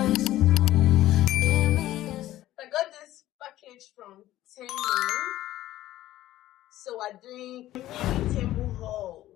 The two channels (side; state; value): right; quieter; 14.6 dB